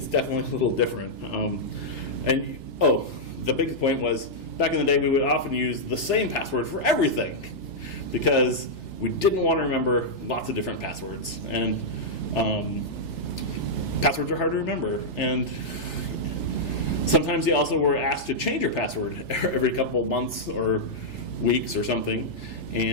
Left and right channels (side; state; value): right; late; 3.5 ms